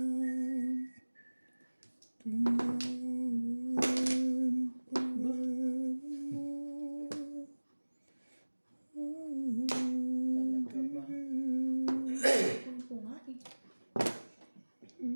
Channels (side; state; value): both; inverted; correlation -1.00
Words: ko nga eh.